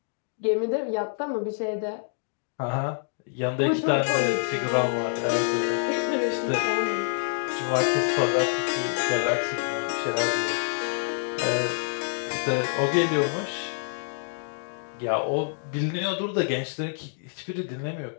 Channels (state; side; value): silent; right; digital silence